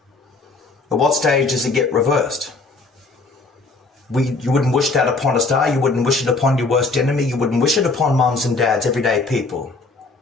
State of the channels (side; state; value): right; quieter; 3.6 dB